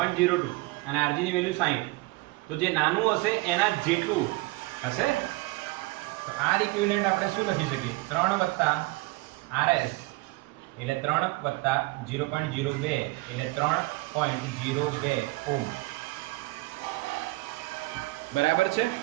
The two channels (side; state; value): left; quieter; 22.7 dB